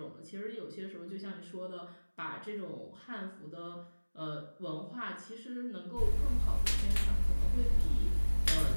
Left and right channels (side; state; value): both; inverted; correlation -1.00